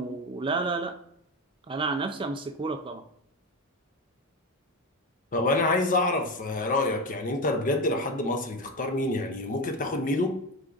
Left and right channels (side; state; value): both; normal; correlation 0.18